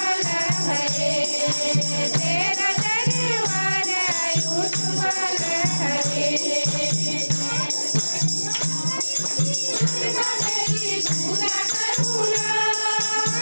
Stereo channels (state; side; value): inverted; both; correlation -1.00